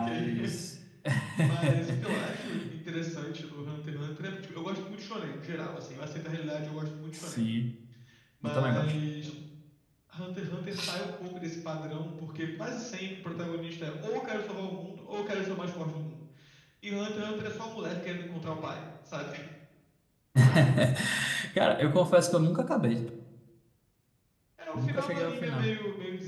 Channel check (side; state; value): both; identical; correlation 1.00